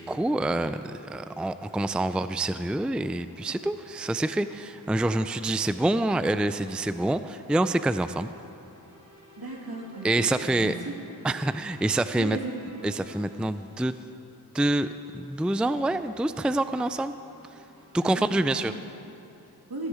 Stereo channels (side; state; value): both; normal; correlation 0.84